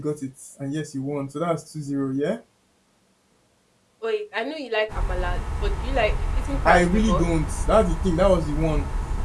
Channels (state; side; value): identical; both; correlation 1.00